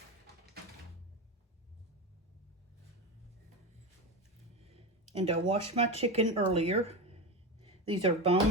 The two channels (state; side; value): normal; both; correlation 0.19